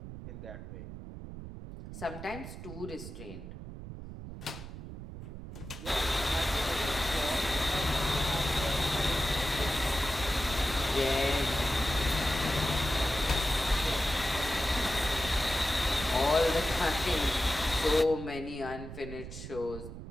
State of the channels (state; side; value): noise; right; rumble, 11 dB below the sound